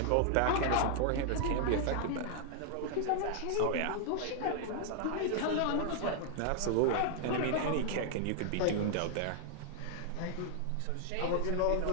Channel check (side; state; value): both; different; correlation -0.01